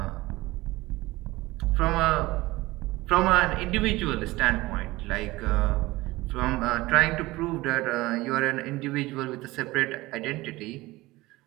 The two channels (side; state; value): left; quieter; 19.7 dB